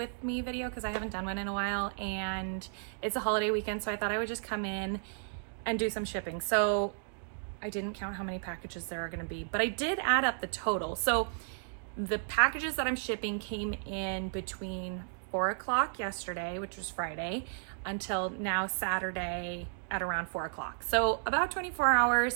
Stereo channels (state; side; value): silent; left; digital silence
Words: me video because I haven't done one in a while and it's a holiday weekend, so I thought I would just come in and do some shipping. So I didn't count how many packages there are gonna be, but I did add up the total. So the packages that I'm shipping came in between 4 o'clock yesterday, which was Friday, until now Saturday at around 4 o'clock. So about 24